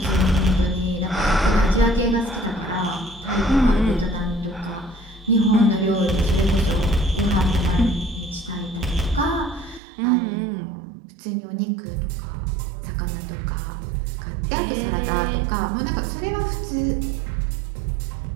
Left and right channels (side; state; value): left; drops out; at 9.8 s